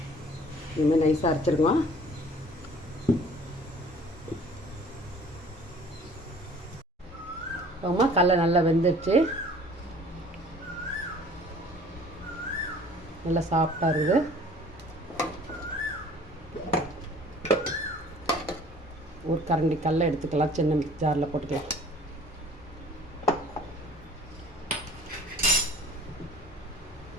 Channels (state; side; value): normal; both; correlation 0.50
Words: இனிமேல் நைஸாக அரைச்சிருக்கோம். அப்புறமா கடலை நல்லா வெந்துடுச்சு. நல்லா சாஃப்டாக இருக்குது. ஒரு கரண்டி கடலை எடுத்துக்கலாம். சின்ன ஜாரில் போட்டுக்கலாம்.